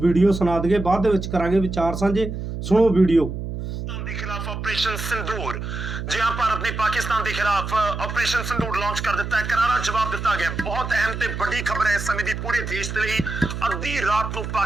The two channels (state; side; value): noise; right; hum, 6 dB below the sound